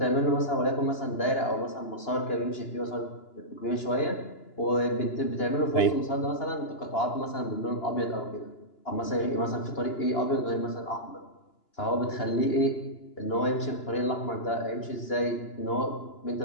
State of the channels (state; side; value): late; right; 2.9 ms